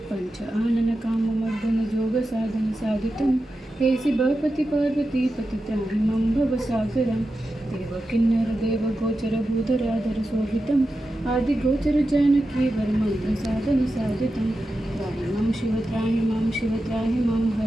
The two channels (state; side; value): normal; both; correlation 0.91